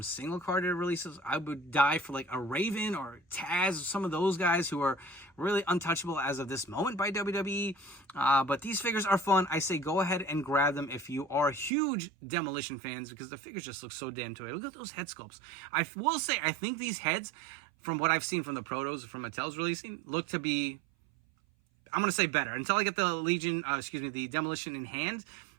single carded releases. I would die for like a Raven or Taz, some of those guys who are really untouchable as of this moment by WWE. But these figures are fun. I say go ahead and grab them if you are huge Demolition fans, because the figures just look so damn toy. Look at those head sculpts. I will say, I think these heads, from what I've seen from the protos from Mattel's releasing, look to be, I'm going to say better. Until I get the the Demolition in hand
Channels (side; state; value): left; drops out; at 11.7 s